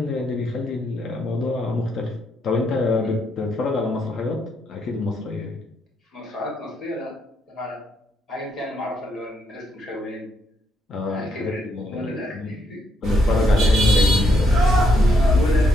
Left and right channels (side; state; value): both; normal; correlation 0.76